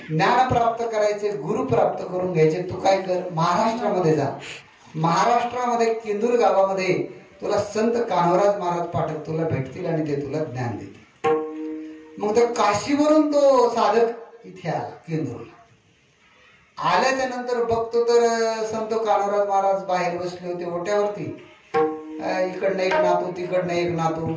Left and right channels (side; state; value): both; identical; correlation 1.00